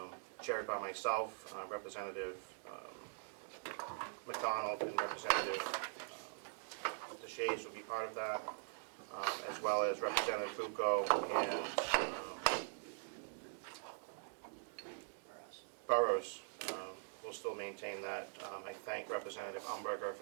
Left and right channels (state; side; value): silent; left; digital silence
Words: chaired by myself, Representative McDonald, and Representative Deshays will be part of that, as well as Representative Bucco and Burrows will still maintain that. I thank Representative Umberger